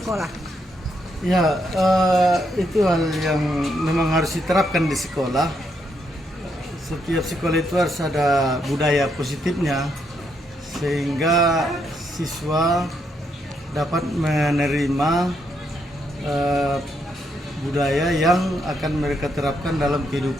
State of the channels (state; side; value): normal; both; correlation 0.77